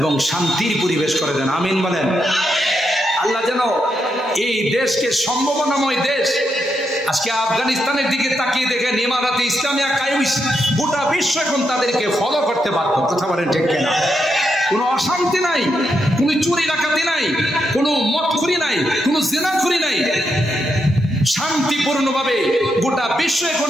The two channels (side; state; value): both; normal; correlation 0.82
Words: শান্তির পরিবেশ করে দেন, আমিন বলেন। আল্লাহ যেন এই দেশকে সম্ভাবনাময় দেশ। আজকে আফগানিস্তানের দিকে তাকিয়ে দেখেন, ইমারাতে ইসলামিয়া কায়েম, গোটা বিশ্ব এখন তাদেরকে ফলো করতে বাধ্য, কথা বলেন ঠিক কিনা। কোনো অশান্তি নাই, কোনো চুরি ডাকাতি নাই, কোনো মদখুরি নাই, কোনো জিনাখুরি নাই, শান্তিপূর্ণভাবে গোটা বিশ্ব এখন